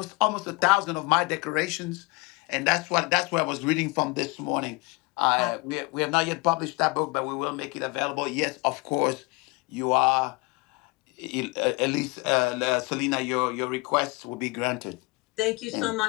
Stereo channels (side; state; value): right; quieter; 26.4 dB